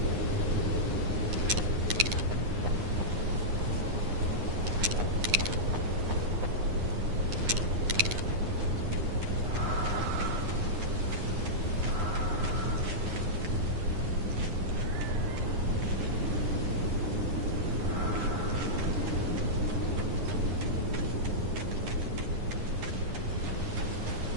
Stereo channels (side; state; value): left; late; 9.7 ms